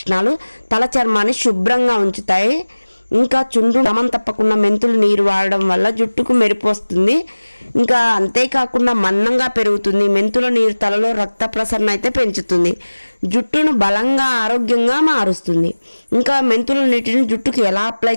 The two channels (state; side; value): inverted; both; correlation -1.00